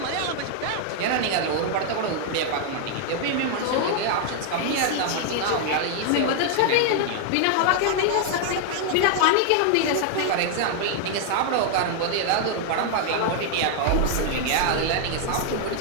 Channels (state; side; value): different; both; correlation 0.00